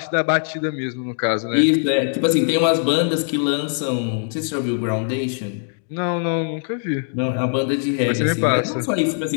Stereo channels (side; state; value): right; silent; digital silence